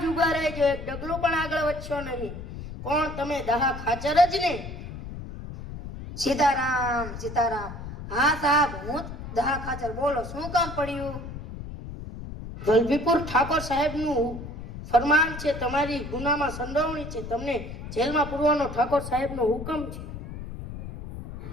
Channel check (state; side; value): noise; left; rumble, 10 dB below the sound